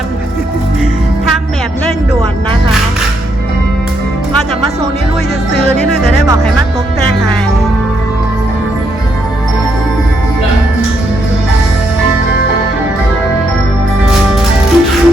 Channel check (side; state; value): both; normal; correlation 0.77